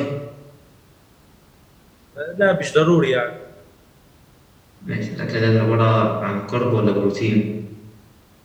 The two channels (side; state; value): both; identical; correlation 1.00